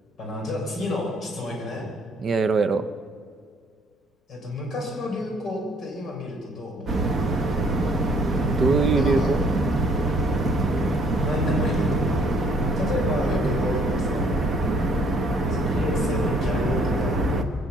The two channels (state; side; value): normal; both; correlation 0.63